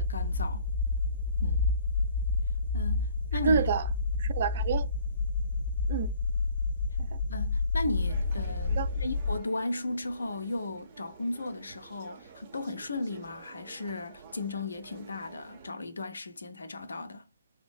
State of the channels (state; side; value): inverted; both; correlation -0.60